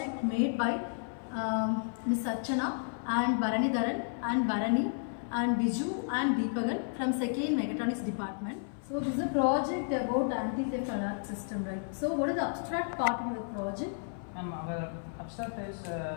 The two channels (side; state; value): right; silent; 56 dB below the other